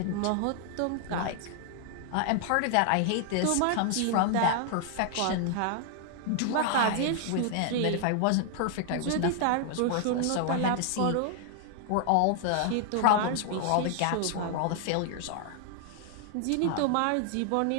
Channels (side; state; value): both; different; correlation 0.00